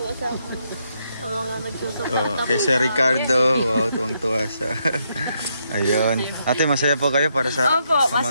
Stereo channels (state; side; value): inverted; both; correlation -0.77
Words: sa mga nagsusuporta po. Kay Sir Ricardo, wow, tuwang-tuwa siya. Ayun. Ate, masaya po kayo para sa Opo,